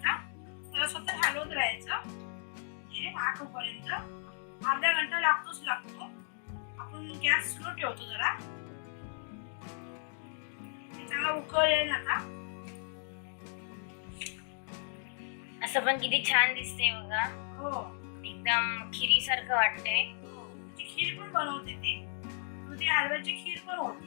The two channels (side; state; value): right; silent; 55 dB below the other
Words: त्याला स्वतः हलवत राहायचं हे आटोपर्यंत. अर्धा घंटा लागतो. आपण गॅस स्लो ठेवतो जरा, चांगला उकळेल. आता असं पण किती छान दिसते बघा, हो एकदम खिरी सारखं वाटतंय. खीर पण बनवते ती, दुधी हलव्याची खीर पण